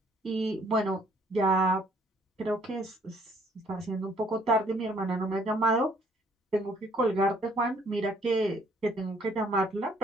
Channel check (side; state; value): both; normal; correlation 0.62